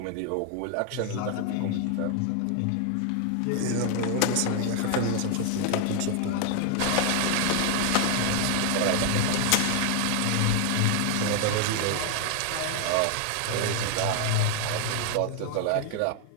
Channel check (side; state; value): both; different; correlation 0.00